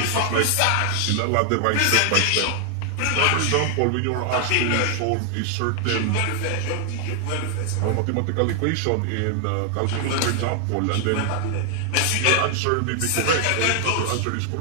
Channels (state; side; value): different; both; correlation 0.00